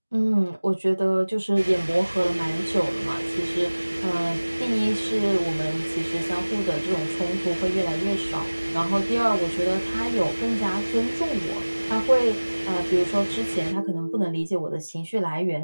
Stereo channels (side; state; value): both; inverted; correlation -1.00